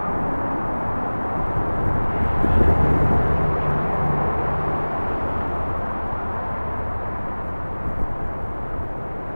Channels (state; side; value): inverted; both; correlation -1.00